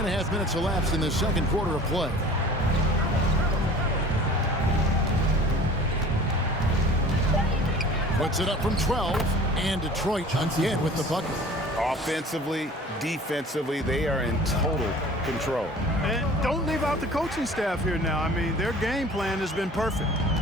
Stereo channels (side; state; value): both; normal; correlation 0.45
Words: minutes elapsed in the second quarter of play. Puts it up from 12, and Detroit again with the bucket. Offensively, defensively, they are in total control. And don't leave out the coaching staff here now. I mean, their game plan has been perfect.